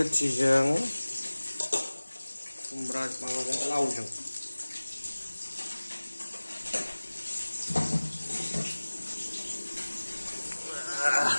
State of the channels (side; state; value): both; inverted; correlation -1.00